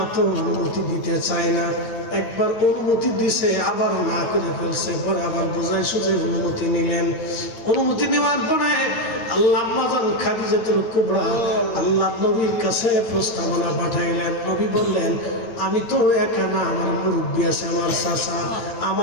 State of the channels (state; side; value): late; right; 9.1 ms